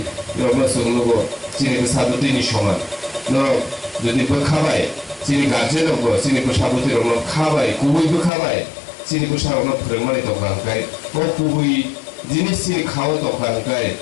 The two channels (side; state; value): right; drops out; at 8.3 s